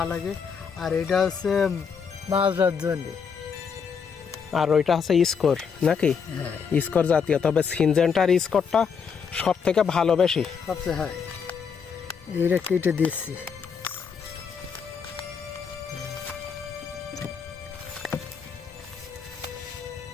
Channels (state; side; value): quieter; right; 6.3 dB